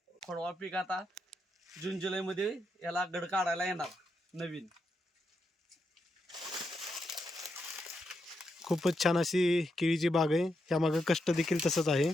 खोडवा पीक आता जून जुलै मध्ये याला गड काढायला येणार नवीन. खूपच छान अशी केळीची बाग आहे. यामागं कष्ट देखील तसंच आहे.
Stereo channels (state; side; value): normal; both; correlation 0.83